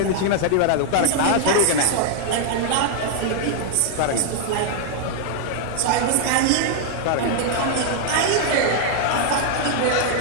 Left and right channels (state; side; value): different; both; correlation -0.01